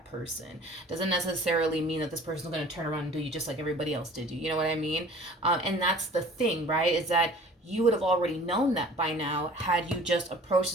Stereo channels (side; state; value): both; normal; correlation 0.47